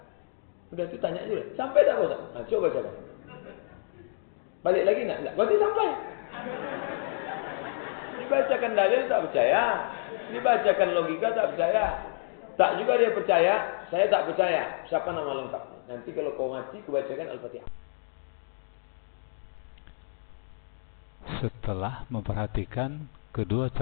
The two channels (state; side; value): silent; right; digital silence